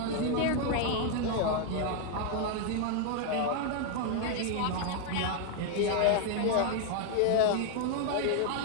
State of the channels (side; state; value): both; different; correlation 0.00